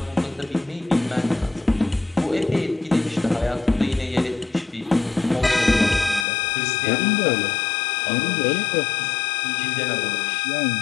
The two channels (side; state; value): right; drops out; at 6.2 s